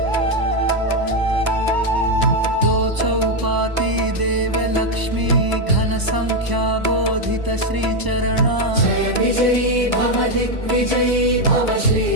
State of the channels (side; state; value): left; late; 1.0 ms